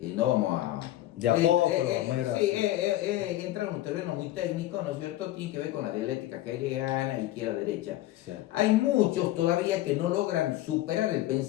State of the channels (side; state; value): right; quieter; 15.1 dB